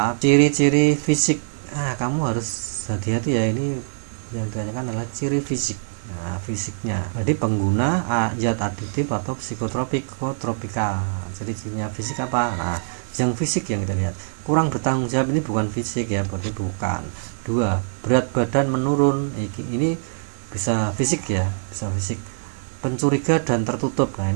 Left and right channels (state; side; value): silent; left; digital silence